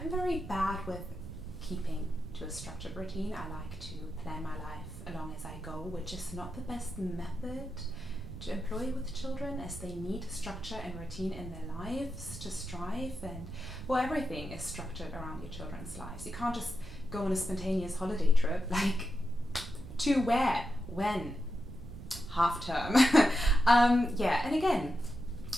very bad with keeping to a structured routine. I like to plan my life along as I go, which is not the best method to employ with children, as they need structure and routine in their lives to strive. And well, everything is structured around your children's lives. You can't just go on a spontaneous holiday trip, like to where, when, half term. Yeah, and again,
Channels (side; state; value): right; noise; rumble, 12 dB below the sound